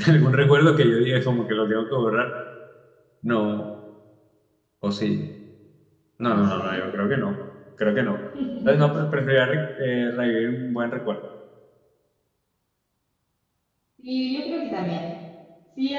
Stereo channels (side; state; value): both; identical; correlation 1.00